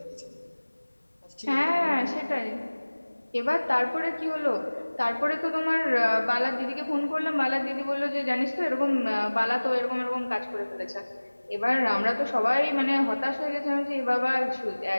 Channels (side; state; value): both; inverted; correlation -1.00